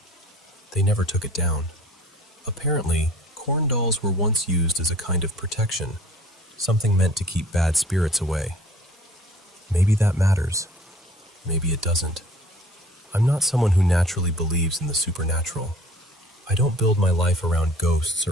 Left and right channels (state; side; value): normal; both; correlation 0.50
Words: They never took it down. Apparently, corn dolls were once used as a kind of protection, something meant to keep bad spirits away. Maybe that matters. Maybe it doesn't. I'm not someone who naturally believes in the supernatural. I don't build my life around ghosts